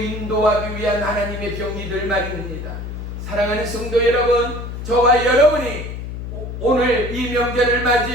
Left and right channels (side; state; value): left; noise; hum, 7 dB below the sound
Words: 위한 하나님의 병이들 말입니다. 사랑하는 성도 여러분, 저와 여러분이 오늘 이 명절을